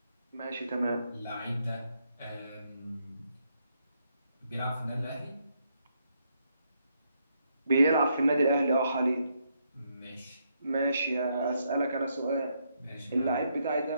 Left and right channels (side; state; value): both; inverted; correlation -0.77